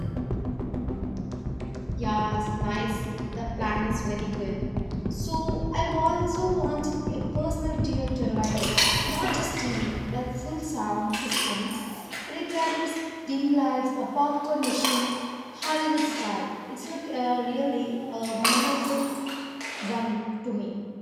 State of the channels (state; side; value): identical; both; correlation 1.00